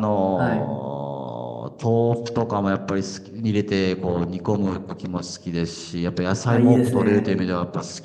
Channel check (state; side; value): identical; both; correlation 1.00